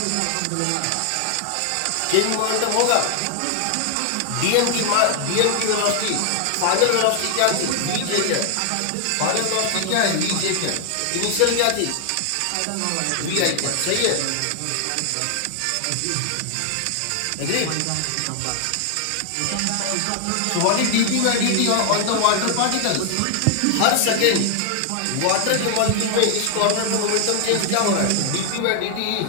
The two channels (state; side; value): different; both; correlation 0.00